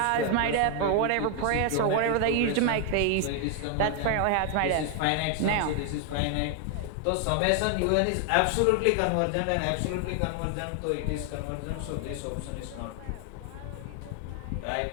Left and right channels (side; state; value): both; different; correlation 0.00